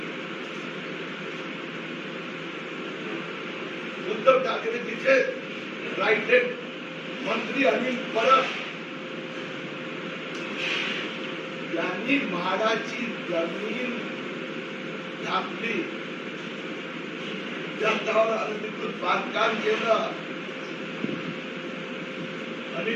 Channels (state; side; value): identical; both; correlation 1.00